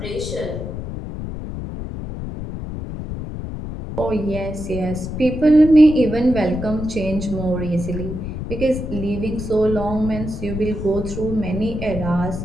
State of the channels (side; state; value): left; noise; rumble, 7 dB below the sound